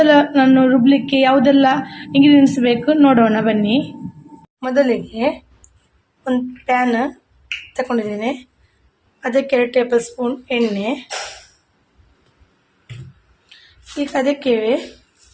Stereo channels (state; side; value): identical; both; correlation 1.00